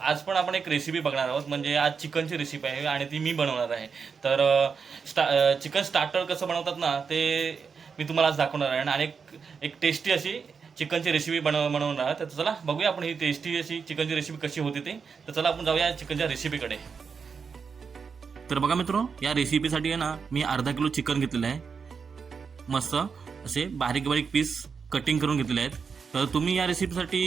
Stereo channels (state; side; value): quieter; left; 5.8 dB